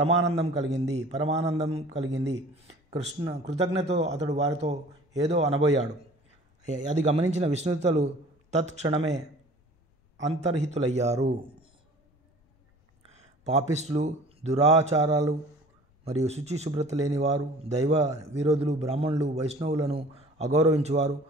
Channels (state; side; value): normal; both; correlation 0.47